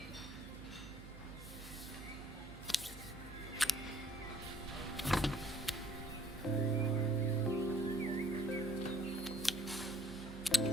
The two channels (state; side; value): noise; right; hum, 14 dB below the sound